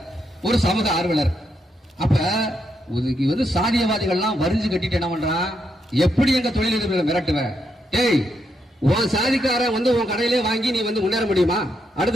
ஒரு சமூக ஆர்வலர். அப்ப வந்து சாதியவாதிகள்லாம் வரிஞ்சு கட்டிட்டு என்ன பண்றான், எப்படி எங்க தொழிலதிபர்களை மிரட்டுவேன், ஏய் உன் சாதிக்கார வந்து உன் கடையிலே வாங்கி நீ வந்து முன்னேற முடியுமா,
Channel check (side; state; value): both; normal; correlation 0.80